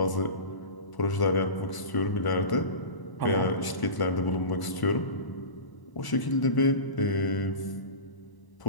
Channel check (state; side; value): late; right; 1.0 ms